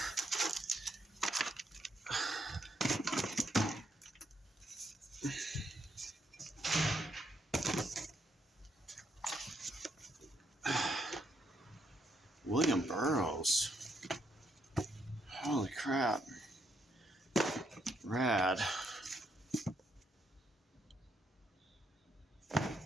William Burroughs. Holy crap. Rad.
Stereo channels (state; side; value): normal; both; correlation 0.76